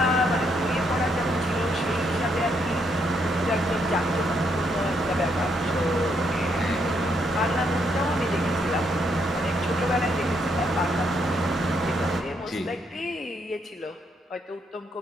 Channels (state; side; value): normal; both; correlation 0.75